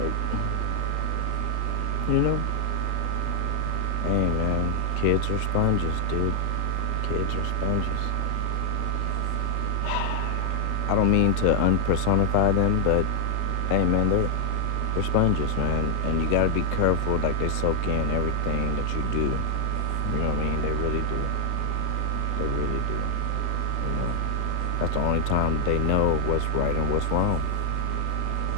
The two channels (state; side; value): different; both; correlation 0.00